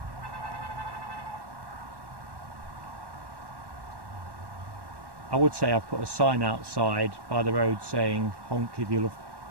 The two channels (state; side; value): late; left; 1.1 ms